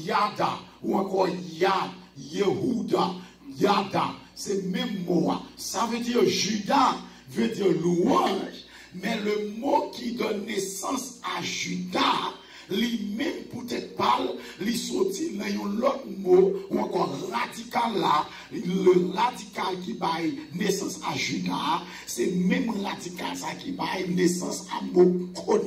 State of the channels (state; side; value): identical; both; correlation 1.00